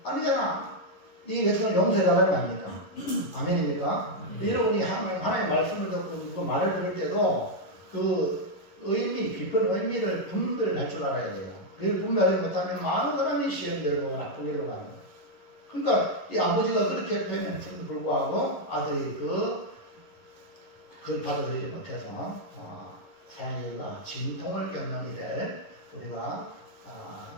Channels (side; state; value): right; late; 11 ms